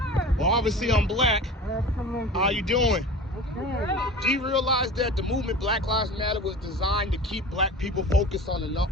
Well, obviously I'm black. How you doing? Do you realize that the movement Black Lives Matter was designed to keep black people focused on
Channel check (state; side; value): normal; both; correlation 0.36